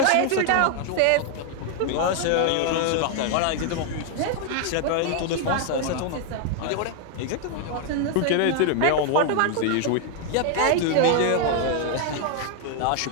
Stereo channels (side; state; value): both; different; correlation 0.00